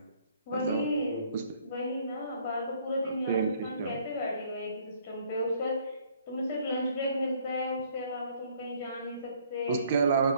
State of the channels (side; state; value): both; inverted; correlation -0.61